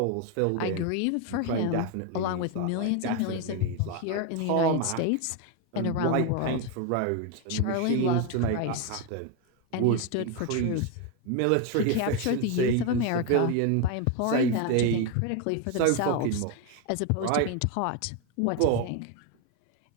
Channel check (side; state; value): both; different; correlation 0.02